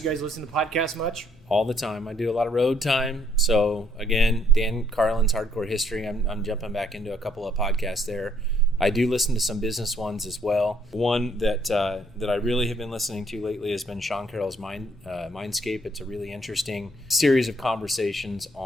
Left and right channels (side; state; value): both; normal; correlation 0.67